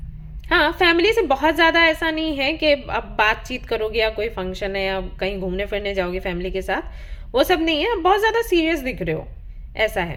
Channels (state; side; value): identical; both; correlation 1.00